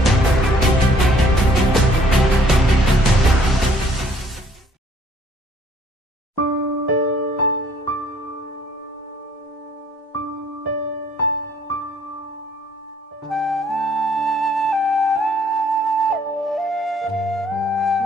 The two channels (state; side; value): normal; both; correlation 0.60